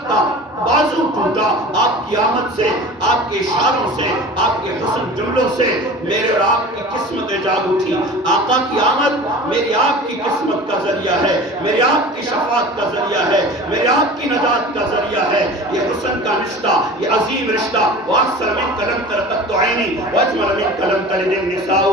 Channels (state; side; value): normal; both; correlation 0.38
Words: کا بازو ٹوٹا، آپ کی آمد سے، آپ کے اشاروں سے، آپ کے حسن جملوں سے میرے اور آپ کی قسمتیں جاگ اٹھی۔ آقا کی آمد میری آپ کی قسمت کا ذریعہ ہے، میری آپ کی شفاعت کا ذریعہ ہے، میری آپ کی نجات کا ذریعہ ہے۔ یہ حسن کا رشتہ، یہ عظیم رشتہ، وَأَحْسَنَ مِنْكَ لَمْ تَرَ قَطُّ عَيْنِي وَأَجْمَلَ مِنْكَ لَمْ تَلِدِ النِّسَاءُ